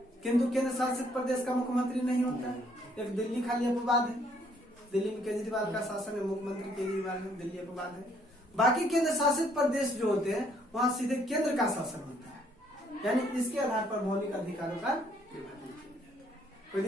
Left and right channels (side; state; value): both; normal; correlation 0.66